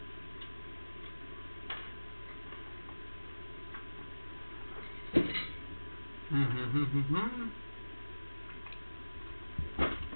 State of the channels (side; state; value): both; inverted; correlation -1.00